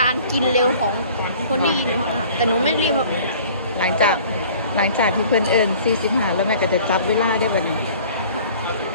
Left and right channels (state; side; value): inverted; both; correlation -0.49